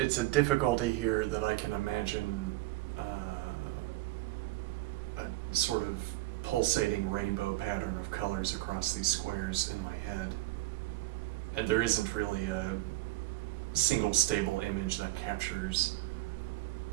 a difficulty here that I can imagine a sort of pulsating rainbow pattern of colors across these squares in my head. And there isn't really a single stable image that captures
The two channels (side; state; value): left; quieter; 18.9 dB